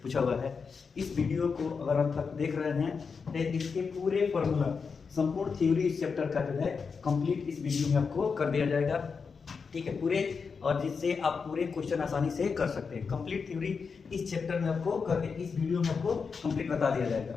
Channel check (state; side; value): quieter; right; 5.4 dB